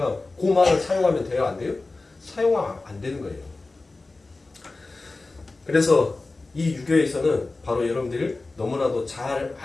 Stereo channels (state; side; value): quieter; right; 3.4 dB